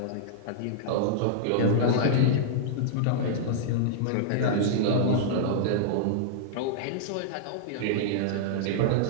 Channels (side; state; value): both; different; correlation -0.01